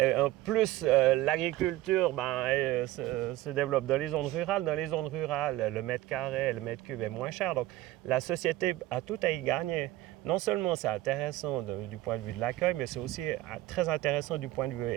en plus, l'agriculture se développe dans les zones rurales. Dans les zones rurales, le mètre carré, le mètre cube est moins cher. Donc, la société a tout à y gagner. Non seulement c'est intéressant du point de vue de l'accueil, mais c'est aussi très intéressant du point de vue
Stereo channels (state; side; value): quieter; left; 16.3 dB